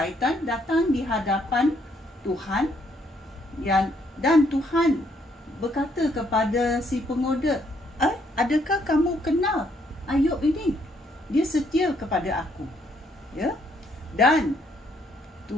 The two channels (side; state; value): both; normal; correlation 0.70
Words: datang di hadapan Tuhan, dan Tuhan berkata kepada si penggoda, adakah kamu kenal Ayub ini? Dia setia kepada aku, ya. Dan